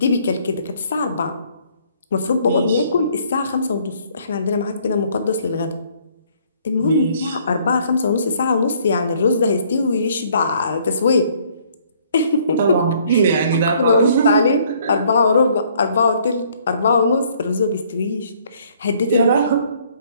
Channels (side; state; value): both; inverted; correlation -0.63